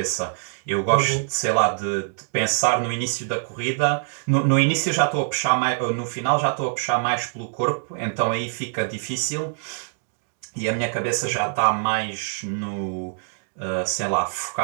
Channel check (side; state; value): left; silent; digital silence